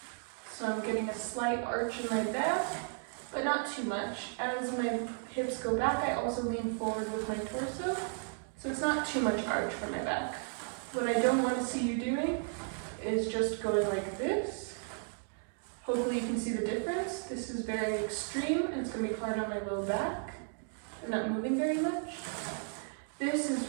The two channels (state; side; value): silent; left; 55 dB below the other